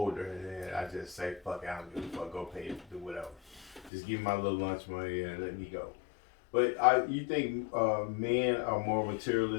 and then I just say, fuck, I don't give a fuck, go pay it, do whatever. Just give me my little lunch money and let me go. But you think men are more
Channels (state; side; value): drops out; right; at 3.9 s